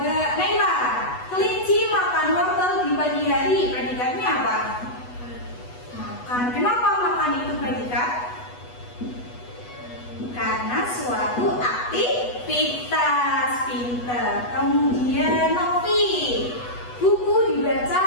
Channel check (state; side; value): late; right; 8.1 ms